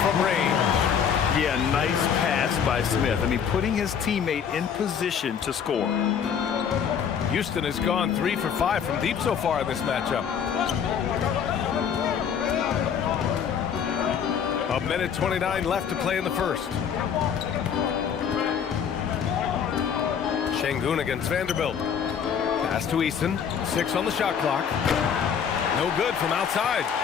from range. Yeah, nice pass by Smith. I mean, putting his teammate in position to score. Houston has gone 3 for 5 from deep so far in this matchup. A minute 29 left to play in the first. Şengün against Vanderbilt. Pass to Eason. 6 on the shot clock. No good from outside.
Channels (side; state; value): right; quieter; 7.6 dB